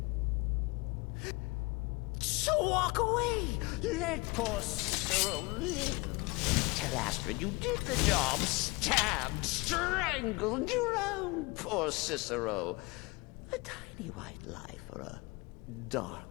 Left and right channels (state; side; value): quieter; right; 25.4 dB